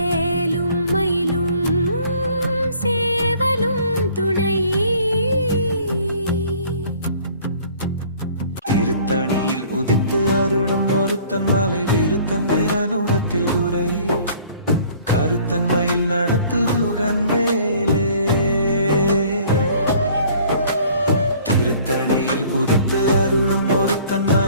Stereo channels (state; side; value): inverted; both; correlation -0.54